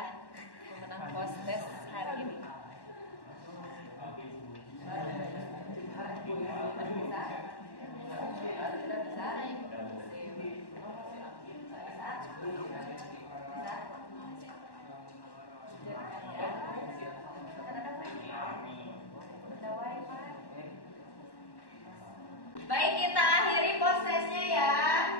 pemenang post test hari ini. Baik, kita akhiri post testnya ya.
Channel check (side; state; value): right; late; 1.1 ms